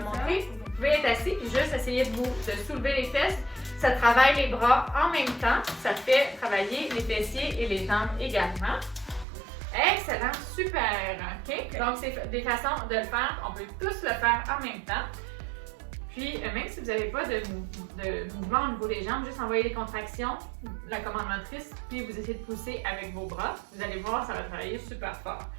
montrer. Vous pouvez être assis et juste essayer de soulever les fesses. Ça travaille les bras en même temps. Ça fait travailler les fessiers et les jambes également. Excellent, super. OK? Donc, c'est des façons de le faire. On peut tous le faire en même temps. Puis, même si vous n'avez pas de mouvement au niveau des jambes, juste envoyer les contractions, la commande motrice, puis vous essayez de pousser avec vos bras. Vous allez voir, ça va travailler super fort.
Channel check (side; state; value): left; drops out; at 9.2 s